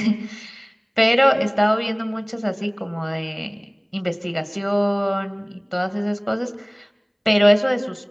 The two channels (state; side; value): identical; both; correlation 1.00